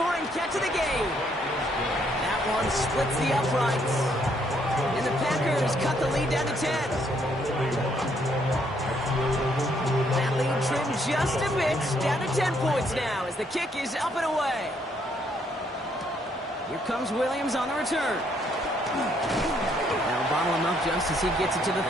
catch of the game. That one splits the uprights. And the Packers cut the lead down to 10. That lead trimmed just a bit, down to 10 points now as the kick is up and away. Here comes Williams on the return. That'll bottle him up just as he gets it to the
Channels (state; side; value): normal; both; correlation 0.70